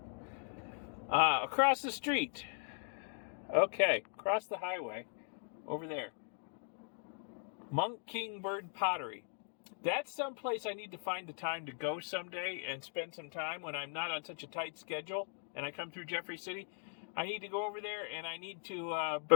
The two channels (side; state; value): right; silent; 52 dB below the other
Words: Across the street. Okay, across the highway, over there. Monk King Bird Pottery. That's someplace I need to find the time to go someday and spend some time when I'm not on such a tight schedule and I come through Jeffrey City. I need to go over there and I need to